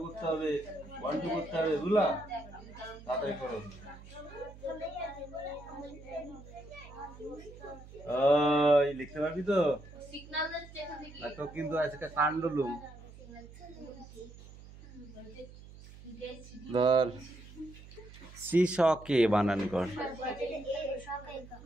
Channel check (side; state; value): right; noise; hum, 18 dB below the sound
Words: করতে হবে, 1 2 করতে হবে, বুঝলা? তাড়াতাড়ি করো। ওই লিখতে পারবি তো? তো কিন্তু আজকে কাণ্ডলুম। ধর শ্রীশকে বানান কর।